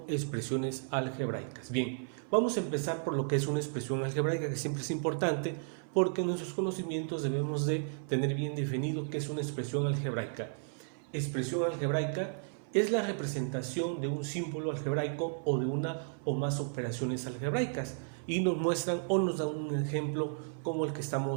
expresiones algebraicas. Bien, vamos a empezar por lo que es una expresión algebraica, que siempre es importante porque en nuestros conocimientos debemos de tener bien definido qué es una expresión algebraica. Expresión algebraica es la representación de un símbolo algebraico o de una o más operaciones algebraicas y nos muestran o nos dan un ejemplo como el que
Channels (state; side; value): silent; left; 55 dB below the other